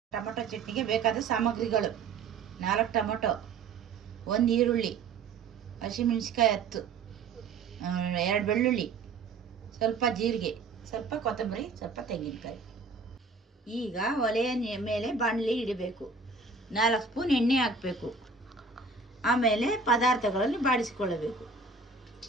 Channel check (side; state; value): left; quieter; 4.4 dB